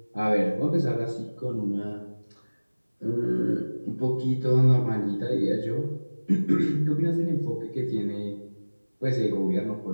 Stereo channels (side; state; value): both; inverted; correlation -1.00